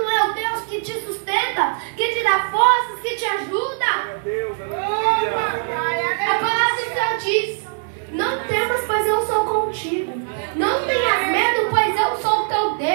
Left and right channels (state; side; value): silent; left; digital silence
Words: é o Deus que te sustenta, que te dá forças, que te ajuda. A palavra do Senhor diz: não temas, pois eu sou contigo. Não tenhas medo, pois eu sou o teu